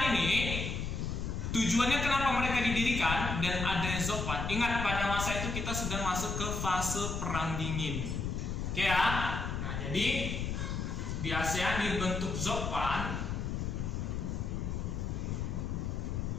ini tujuannya kenapa mereka didirikan dan ada ZOPAN. Ingat, pada masa itu kita sedang masuk ke fase perang dingin. Oke ya. Nah, jadi di ASEAN dibentuk ZOPAN.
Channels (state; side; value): noise; left; rumble, 2 dB below the sound